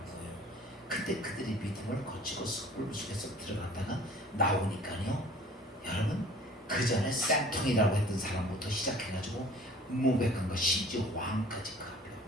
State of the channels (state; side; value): normal; both; correlation 0.49